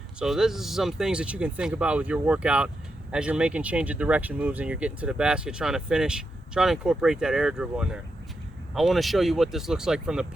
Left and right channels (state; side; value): normal; both; correlation 0.86